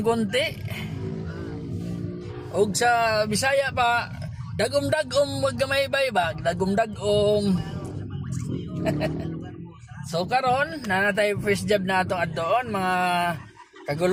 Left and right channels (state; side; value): identical; both; correlation 1.00